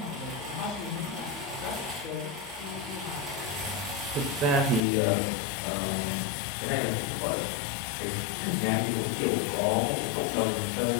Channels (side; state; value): right; drops out; at 4.8 s